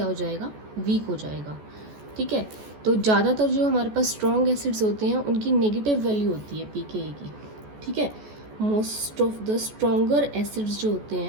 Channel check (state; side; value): late; left; 14 ms